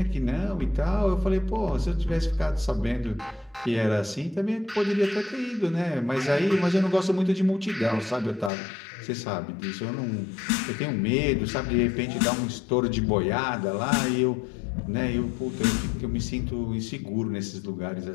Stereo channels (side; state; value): right; drops out; at 8.5 s